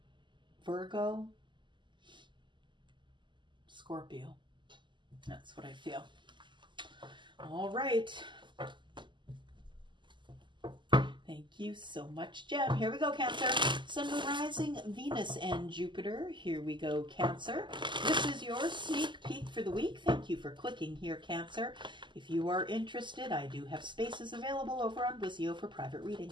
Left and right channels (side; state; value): left; late; 0.23 ms